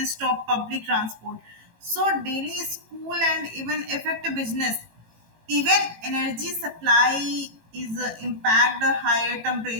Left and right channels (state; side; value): late; left; 18 ms